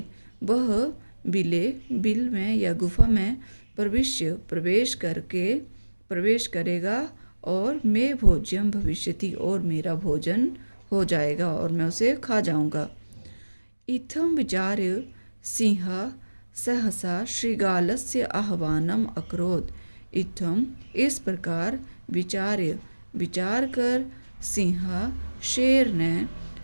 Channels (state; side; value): inverted; both; correlation -1.00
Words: वह बिले बिल में या गुफा में प्रविश्य प्रवेश करेगा और मे भोज्यम भविष्यति और मेरा भोजन हो जाएगा और मैं उसे खा जाऊंगा। इत्थं विचार्य सिंह सहसा श्रीगालस्य आह्वानम अकरोत्। इत्थम इस प्रकार विचार कर सिंह शेर ने